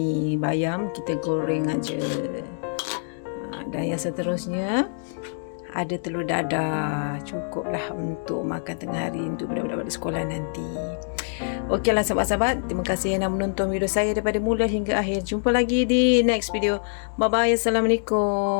bayam kita goreng aja. Dan yang seterusnya ada telur dadah. Cukuplah untuk makan tengah hari untuk budak-budak balik sekolah nanti. Okeylah sahabat-sahabat, terima kasih yang dah menonton video saya daripada mula hingga akhir. Jumpa lagi di next video. Bye bye.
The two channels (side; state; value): right; silent; digital silence